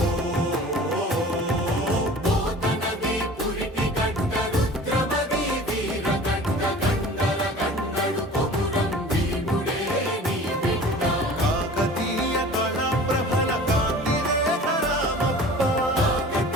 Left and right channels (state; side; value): normal; both; correlation 0.42